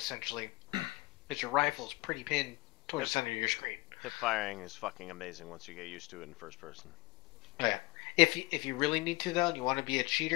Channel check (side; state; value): right; quieter; 22.7 dB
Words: Because your rifle's pretty pinned towards the center of your screen. Hip firing is fucking amazing once you get used to it in first person. Oh, yeah. If you really need to, though, and you want to be a